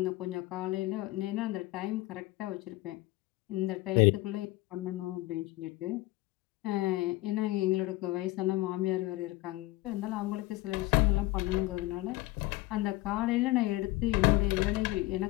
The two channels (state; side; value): quieter; right; 19.0 dB